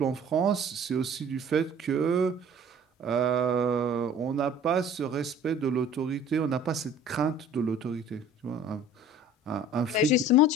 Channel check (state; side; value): normal; both; correlation 0.48